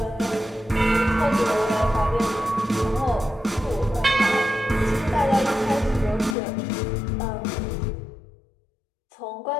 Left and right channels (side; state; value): right; drops out; at 6.4 s